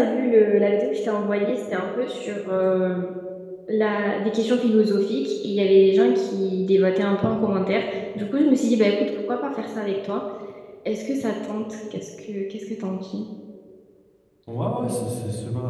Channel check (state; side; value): identical; both; correlation 1.00